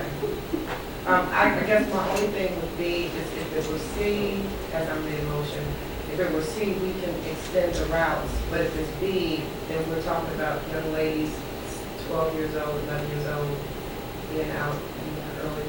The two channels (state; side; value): identical; both; correlation 1.00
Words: I guess my only thing would be is if it was C, as I made a motion, if it was C, we can extend the routes, but if it's B, then we're talking about young ladies, 12 years old, 11 years old, being out in the early